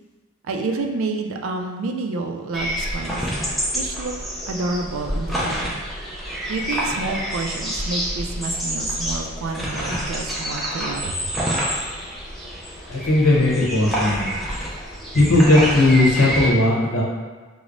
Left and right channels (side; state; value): both; normal; correlation 0.56